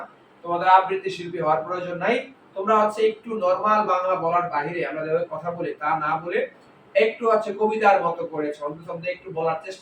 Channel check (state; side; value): identical; both; correlation 1.00